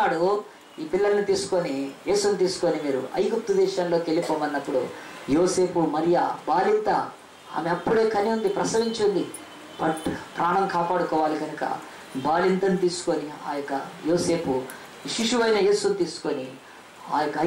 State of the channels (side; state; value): both; identical; correlation 1.00